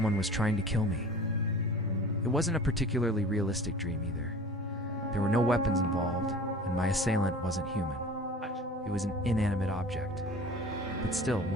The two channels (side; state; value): both; normal; correlation 0.42